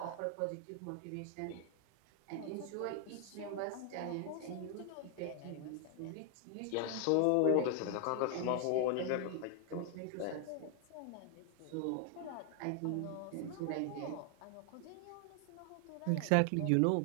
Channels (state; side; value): different; both; correlation 0.00